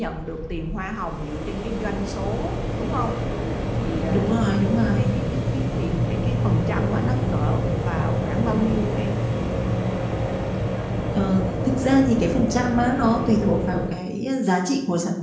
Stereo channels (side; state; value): both; identical; correlation 1.00